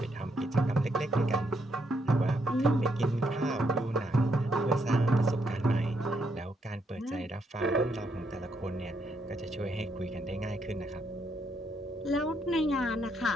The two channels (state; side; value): normal; both; correlation 0.76